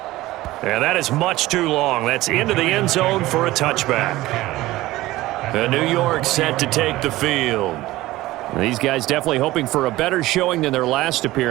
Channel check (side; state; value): left; quieter; 17.6 dB